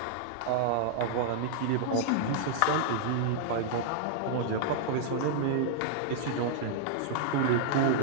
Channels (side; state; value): both; different; correlation -0.01